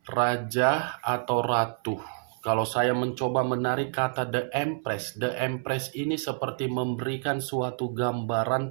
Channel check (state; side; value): silent; left; 59 dB below the other